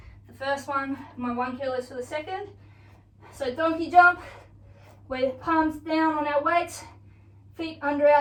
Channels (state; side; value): identical; both; correlation 1.00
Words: the first one, my 1 kilo for the second. So donkey jump, we're palms down on our weights, feet under